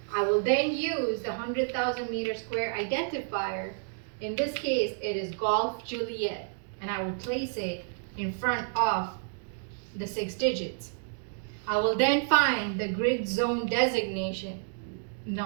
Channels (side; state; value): left; silent; digital silence